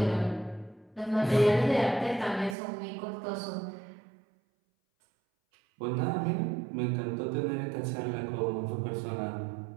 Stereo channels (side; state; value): left; drops out; at 2.6 s